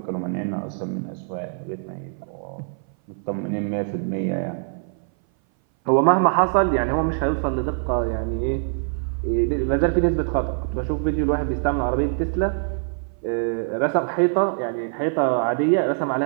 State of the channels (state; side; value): silent; left; 58 dB below the other